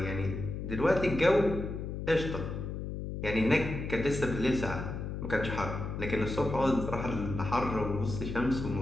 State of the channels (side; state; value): left; noise; hum, 5 dB below the sound